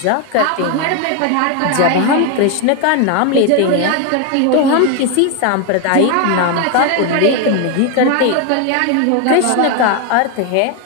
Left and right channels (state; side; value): different; both; correlation 0.01